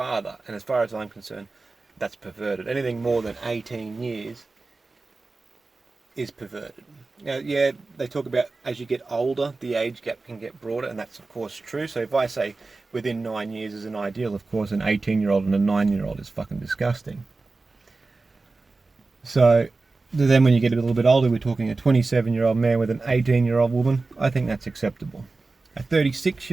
And as far as I'm concerned, that's perverted. Anything more than 18 years is perverted. Now, yeah, they talk about as you get older, the age gap can get broader, and that's of course true. So if I say within 9 years is an ideal, of course an 18-year-old and a 9-year-old is fucking disgusting. So then when you get a little bit older, we're talking a 27-year-old man with an 18-year-old woman. I think that's acceptable. A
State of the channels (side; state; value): left; quieter; 3.6 dB